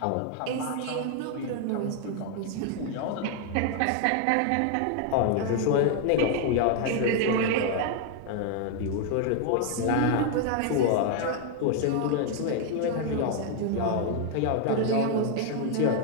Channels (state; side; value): different; both; correlation 0.00